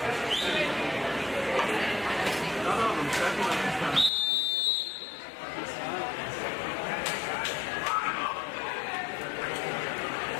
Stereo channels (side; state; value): right; drops out; at 4.1 s